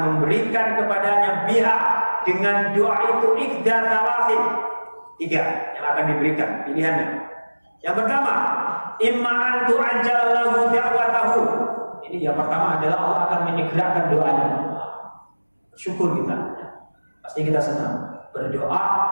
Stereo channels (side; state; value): both; inverted; correlation -1.00